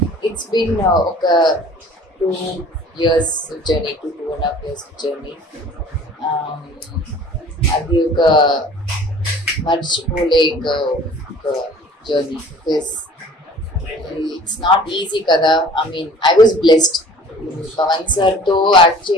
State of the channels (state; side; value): normal; both; correlation 0.48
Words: It's been 2 years journey, 2.5 years journey. అది ఒక మర్చిపోలేక ఒక journey because it's not easy కదా. I mean I was blessed. Pavan sir తో యాక్ట్